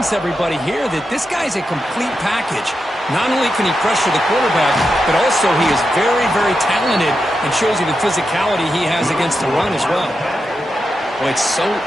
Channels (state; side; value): normal; both; correlation 0.88